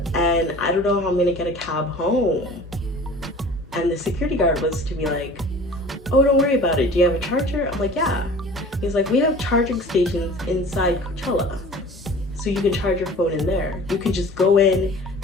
and I don't know how I'm gonna get a cab home. And the security guard was to be like, oh, don't worry about it, do you have a charger? I'm like, yeah. He's like, we have charging stations inside Coachella, so you can charge your phone in there. You can just go in,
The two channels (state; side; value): normal; both; correlation 0.43